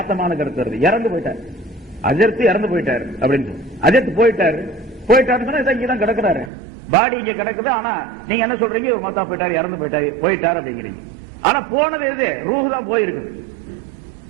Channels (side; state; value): left; drops out; at 6.5 s